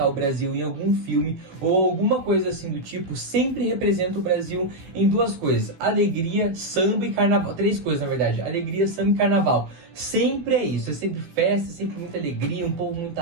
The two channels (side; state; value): left; late; 16 ms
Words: o Brasil em algum filme ou alguma coisa assim do tipo, sempre representa o Brasil em duas coisas: alegria, samba e carnaval. Três coisas, na verdade: alegria, samba e carnaval. Sempre é isso, é sempre festa, é sempre muita alegria, um povo muito